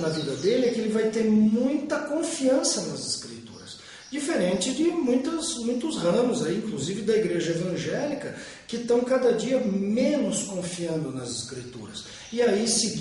vida dele é que ele vai ter muita confiança nas Escrituras. Diferente de muitos ramos, aí, inclusive da igreja evangélica, que estão cada dia menos confiando nas Escrituras. E aí se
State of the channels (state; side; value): identical; both; correlation 1.00